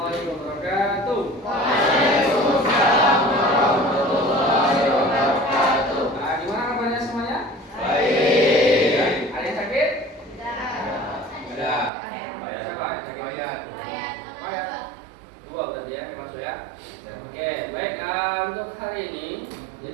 wabarakatuh. Waalaikumsalam warahmatullahi wabarakatuh. Gimana kabarnya semuanya? Baik. Ada yang sakit? Ada. Siapa yang sakit? Mayat. Dua berarti ya, memang sudah. Oke, baik. Untuk hari ini,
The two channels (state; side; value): drops out; left; at 11.9 s